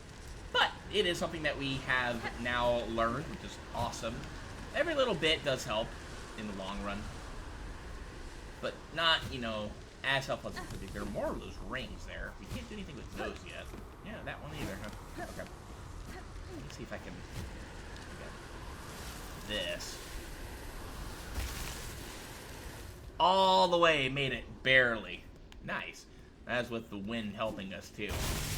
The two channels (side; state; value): both; identical; correlation 1.00